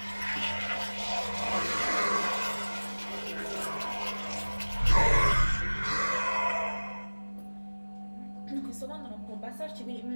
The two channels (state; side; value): inverted; both; correlation -1.00